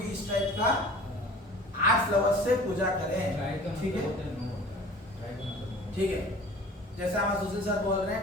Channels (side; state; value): both; normal; correlation 0.44